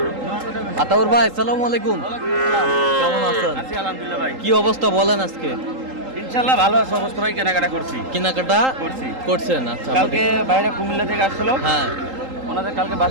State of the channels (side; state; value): left; late; 3.8 ms